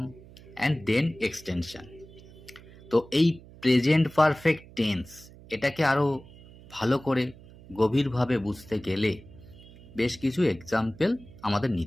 and then extension. তো এই প্রেজেন্ট পারফেক্ট টেন্স এটাকে আরও ভালো করে গভীরভাবে বুঝতে গেলে বেশ কিছু এক্সাম্পল আমাদের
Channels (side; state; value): right; noise; hum, 21 dB below the sound